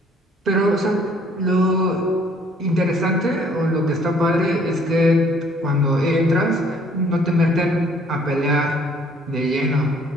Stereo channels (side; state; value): both; normal; correlation 0.60